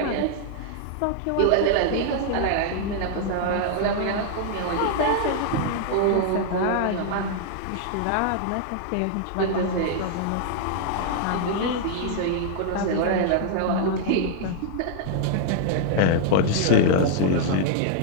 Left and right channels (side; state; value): both; different; correlation -0.01